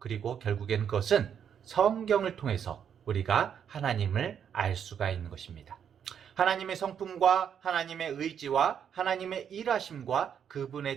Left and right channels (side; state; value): left; quieter; 8.2 dB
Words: 결국에는 그것은 성경을 통해서 우리가 하나님을 알 수가 있는 것입니다. 하나님의 성품과 하나님의 의지와 하나님의 일하심과